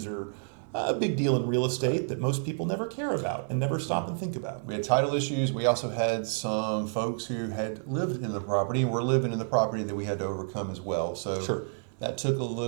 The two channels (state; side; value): silent; left; 58 dB below the other